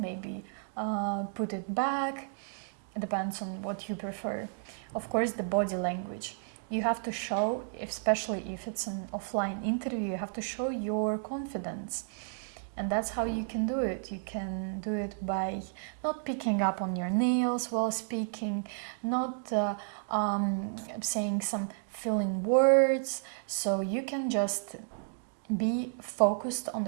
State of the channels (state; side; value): silent; left; digital silence